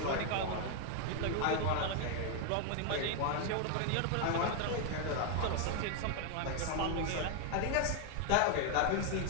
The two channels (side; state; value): both; different; correlation 0.00